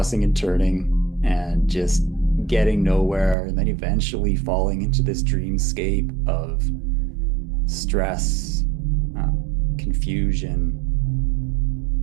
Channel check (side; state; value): left; drops out; at 3.4 s